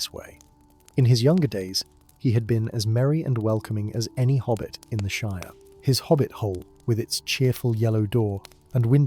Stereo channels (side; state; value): both; identical; correlation 1.00